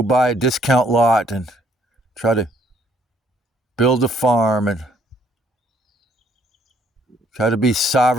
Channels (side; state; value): both; normal; correlation 0.65